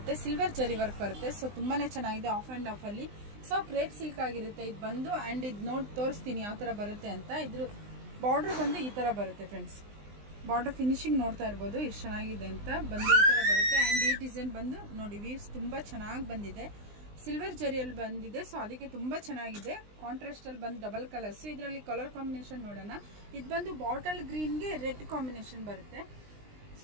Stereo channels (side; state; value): left; late; 20 ms